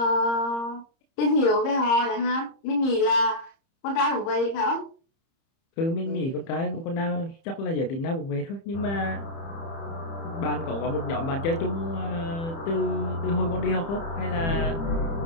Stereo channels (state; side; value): late; right; 30 ms